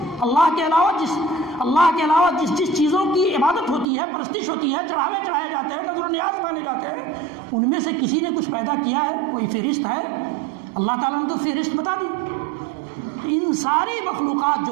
اللہ کے علاوہ جس چیزوں کی عبادت ہوتی ہے، پرستش ہوتی ہے، چڑھاوے چڑھائے جاتے ہیں، نظر و نیاز مانے جاتے ہیں، ان میں سے کسی نے کچھ پیدا کیا ہے؟ کوئی فہرست ہے؟ اللہ تعالیٰ نے تو فہرست بتا دی۔ ان ساری مخلوقات جو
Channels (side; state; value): left; drops out; at 3.9 s